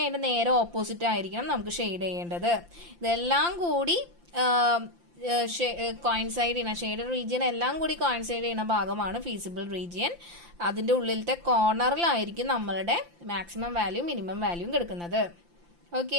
അതിന്റെ നേരെ ഓപ്പോസിറ്റ് ആയിരിക്കണം നമുക്ക് ഷെയ്ഡ് ചെയ്യേണ്ടത്. ഇതെല്ലാം കൂടി കോയിൻസൈഡ് ചെയ്യുന്ന ഷെയ്ഡഡ് റീജിയൻ എല്ലാം കൂടി കോയിൻസൈഡ് ചെയ്യുന്ന ഭാഗമാണ് ഫീസിബിൾ റീജിയൻ. അതിന്റെ ഉള്ളിലത്തെ കോർണറിലായിരിക്കും നമ്മളുടെ മാക്സിമം വാല്യൂ മിനിമം വാല്യൂം കിടക്കുന്നത്.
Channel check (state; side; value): late; left; 5.8 ms